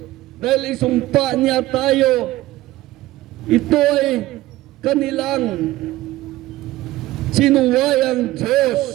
dahil isumpa niya tayo. Ito ay kanilang sinuwayang Diyos.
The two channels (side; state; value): left; quieter; 16.8 dB